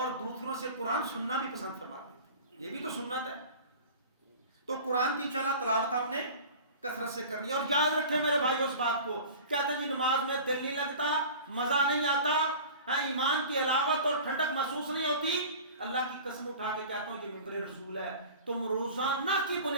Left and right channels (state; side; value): inverted; both; correlation -0.39